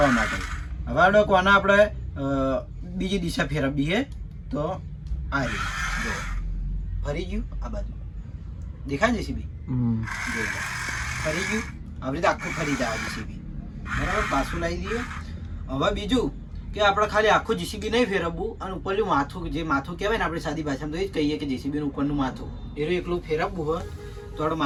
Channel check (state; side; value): identical; both; correlation 1.00